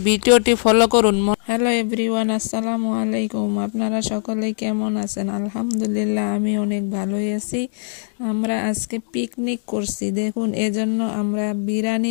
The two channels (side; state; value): right; silent; digital silence